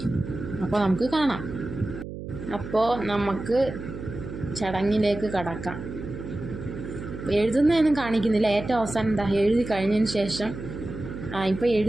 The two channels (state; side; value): noise; right; hum, 10 dB below the sound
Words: അപ്പോൾ നമുക്ക് കാണാം. അപ്പോൾ നമുക്ക് ചടങ്ങിലേക്ക് കടക്കാം. എഴുതുന്നതൊന്നും കാണിക്കുന്നില്ല. ഏറ്റവും അവസാനം എഴുതി കഴിഞ്ഞതിന് ശേഷം ഇപ്പോൾ